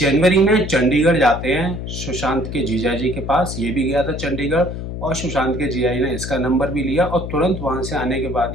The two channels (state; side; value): noise; left; hum, 6 dB below the sound